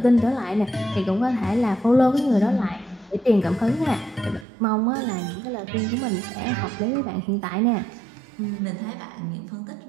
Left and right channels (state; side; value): drops out; left; at 4.5 s